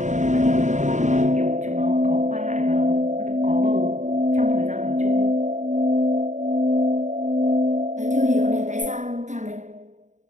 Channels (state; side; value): late; left; 0.35 ms